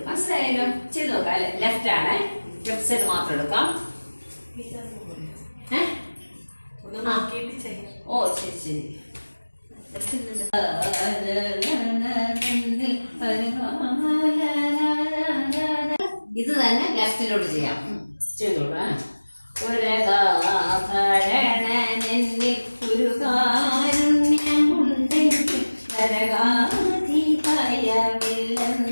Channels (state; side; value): inverted; both; correlation -1.00